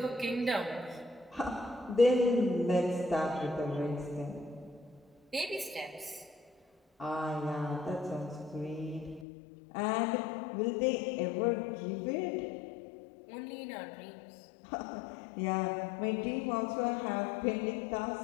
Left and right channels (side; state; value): right; drops out; at 9.2 s